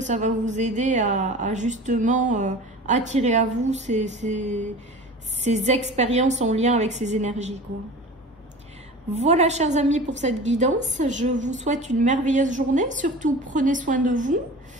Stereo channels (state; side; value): normal; both; correlation 0.37